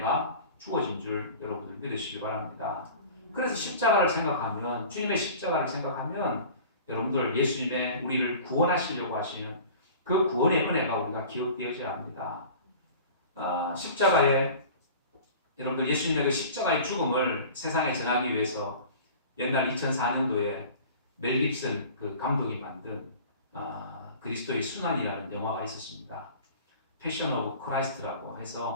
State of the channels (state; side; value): inverted; both; correlation -0.41